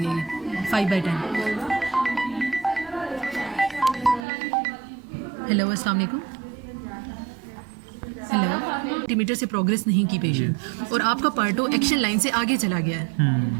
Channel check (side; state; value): left; drops out; at 4.2 s